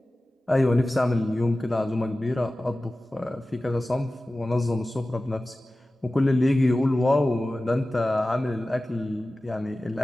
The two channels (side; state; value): both; normal; correlation 0.96